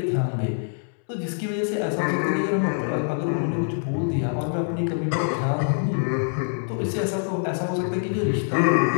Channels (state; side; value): silent; right; 62 dB below the other